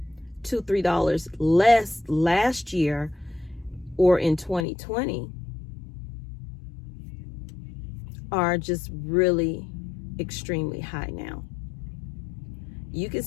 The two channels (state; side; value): drops out; right; at 4.7 s